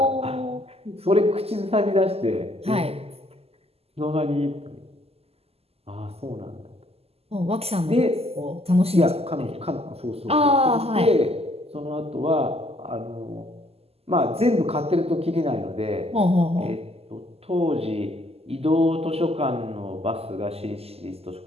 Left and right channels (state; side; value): late; left; 0.29 ms